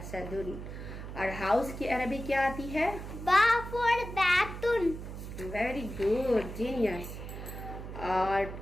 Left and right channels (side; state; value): right; noise; hum, 9 dB below the sound